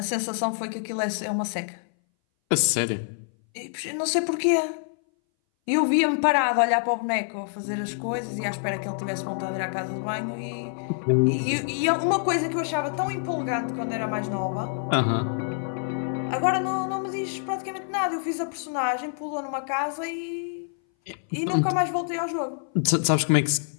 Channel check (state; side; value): silent; right; 59 dB below the other